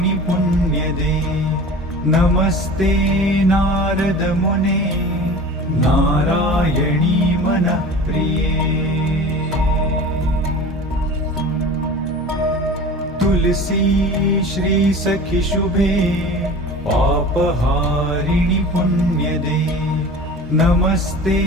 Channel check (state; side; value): normal; both; correlation 0.38